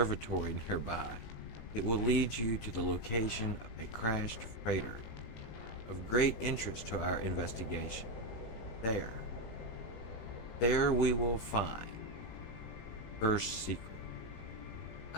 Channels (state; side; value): late; right; 18 ms